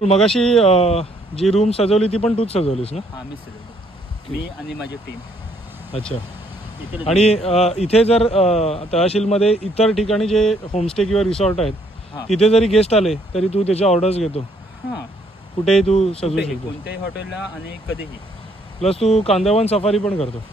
मगाशी जी रूम सजवली ती पण तूच सजवलीस ना? हा, मी सजवली, मी आणि माझी टीम. अच्छा. आणि इथे जर तहसीलमध्ये इतर ठिकाणी जे होमस्टे किंवा रिसॉर्ट आहेत तिथे जरी गेस्ट आले तरी तू त्याच्या ऑर्डर्स घेतो? कुठेही तू सजवू शकतो, कोणत्याही हॉटेलला आणि कधीही. प्लस तू कांदळवन सफारी पण करतो?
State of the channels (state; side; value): normal; both; correlation 0.67